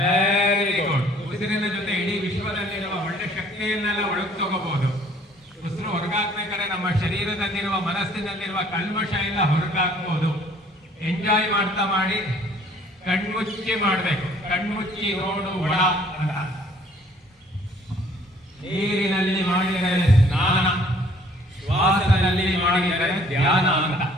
good. ಉಸಿರಿನ ಜೊತೆ ಇಡೀ ವಿಶ್ವದಲ್ಲಿರುವ ಒಳ್ಳೆ ಶಕ್ತಿಯನ್ನೆಲ್ಲ ಒಳಗೆ ತಗೋಬಹುದು. ಉಸಿರು ಹೊರಗಾಕ್ಬೇಕಾದ್ರೆ ನಮ್ಮ ಶರೀರದಲ್ಲಿರುವ ಮನಸ್ಸಿನಲ್ಲಿರುವ ಕಲ್ಮಶ ಎಲ್ಲ ಹೊರಗಾಕ್ಬಹುದು. ಎಂಜಾಯ್ ಮಾಡ್ತಾ ಮಾಡಿ. ಕಣ್ಮುಚ್ಚಿ ಮಾಡಬೇಕು. ಕಣ್ಮುಚ್ಚಿ ನೋಡು ಒಳ ಅಂತ. ನೀರಿನಲ್ಲಿ ಮಾಡಿದರೆ ಸ್ನಾನ, ಶ್ವಾಸದಲ್ಲಿ ಮಾಡಿದರೆ ಧ್ಯಾನ ಅಂತ.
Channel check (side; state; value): both; normal; correlation 0.58